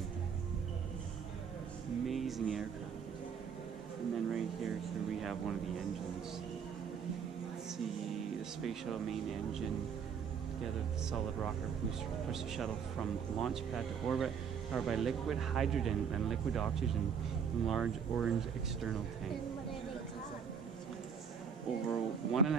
aircraft. And then right here we have one of the engines. Let's see the space shuttle main engine together with the solid rocket push the shuttle from launch pad to orbit, powered by liquid hydrogen and liquid oxygen in large orange external tank. And what are they called? Over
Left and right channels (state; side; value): quieter; left; 6.9 dB